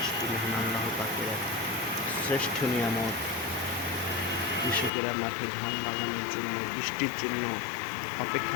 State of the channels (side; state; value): right; drops out; at 4.9 s